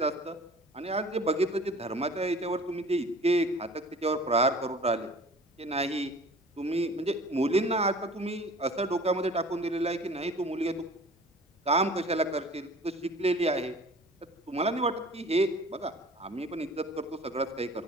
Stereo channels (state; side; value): normal; both; correlation 0.45